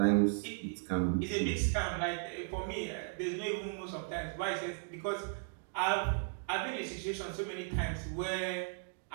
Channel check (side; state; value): left; silent; digital silence